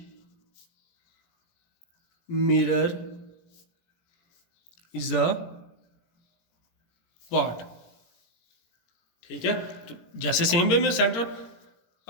mirror is a part, ठीक है। तो जैसे सेम वे में सेंटर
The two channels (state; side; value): late; right; 17 ms